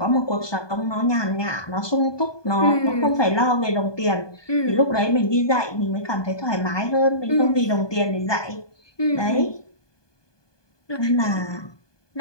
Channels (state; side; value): late; right; 1.2 ms